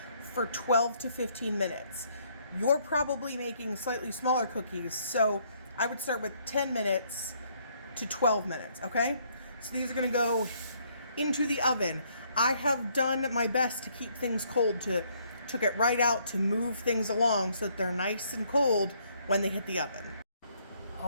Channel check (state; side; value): inverted; both; correlation -0.68